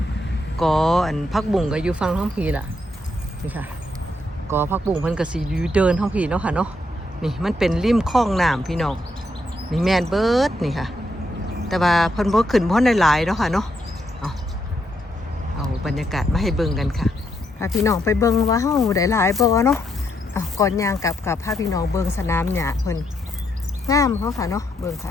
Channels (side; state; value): both; normal; correlation 0.78